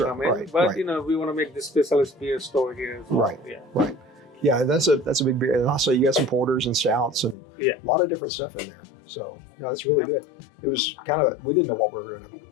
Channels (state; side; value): drops out; right; at 7.4 s